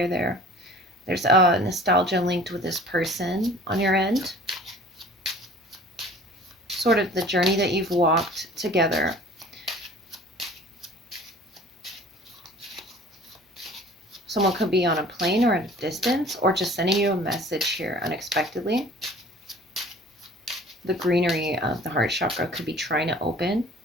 there. There's a nostalgia linked with this person on your end. Sort of the journey that you've walked together. Someone could be on a plane or at a distance, or just sending you a message here unexpectedly. The greenery of the heart chakra could be trying to open,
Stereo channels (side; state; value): both; normal; correlation 0.47